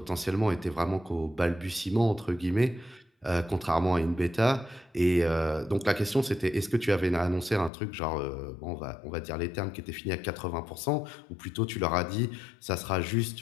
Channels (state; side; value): drops out; right; at 7.7 s